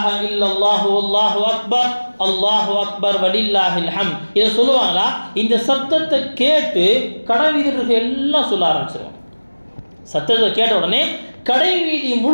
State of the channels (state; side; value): inverted; both; correlation -1.00